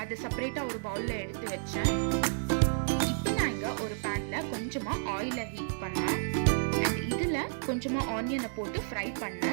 அதை செப்பரேட்டாக ஒரு பவுலில் எடுத்து வச்சேன். இப்போ நான் இங்கே ஒரு பேனில் கொஞ்சமாக ஆயிலை ஹீட் பண்ணேன். அண்ட் இதில் கொஞ்சமாக ஆனியனை போட்டு ஃப்ரை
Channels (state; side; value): silent; left; digital silence